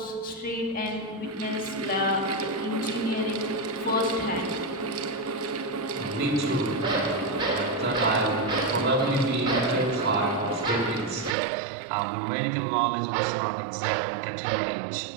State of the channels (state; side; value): drops out; left; at 11.4 s